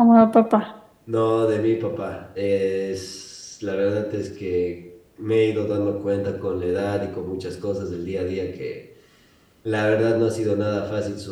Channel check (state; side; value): identical; both; correlation 1.00